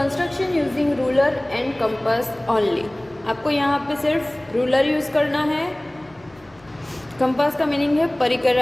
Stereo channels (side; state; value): left; noise; hum, 29 dB below the sound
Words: using ruler and compass only. आपको यहाँ पे सिर्फ रूलर यूज़ करना है. कंपास का मीनिंग है परिकर,